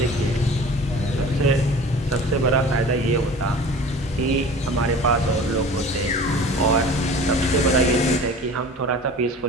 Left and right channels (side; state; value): both; normal; correlation 0.41